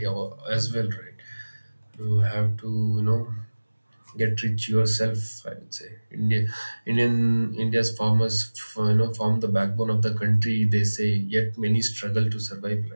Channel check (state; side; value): inverted; both; correlation -1.00